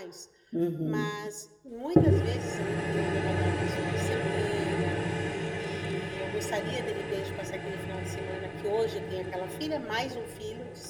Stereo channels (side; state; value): both; identical; correlation 1.00